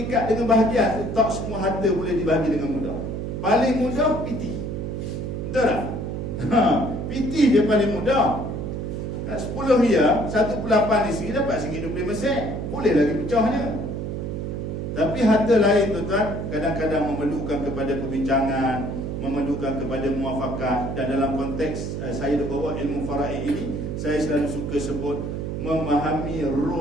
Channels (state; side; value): noise; right; hum, 4 dB below the sound